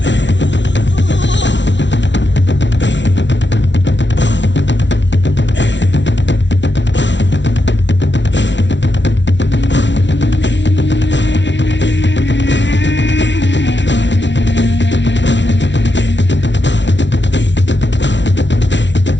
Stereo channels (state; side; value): late; right; 0.52 ms